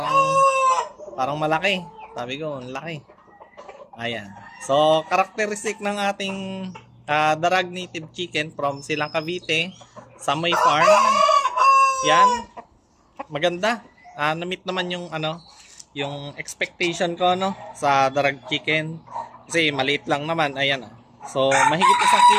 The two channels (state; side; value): identical; both; correlation 1.00